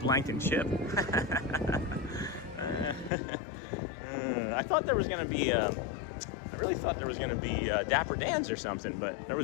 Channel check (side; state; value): right; drops out; at 3.1 s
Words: and chip. I thought there was going to be I really thought there was going to be Dapper Dans or something, but there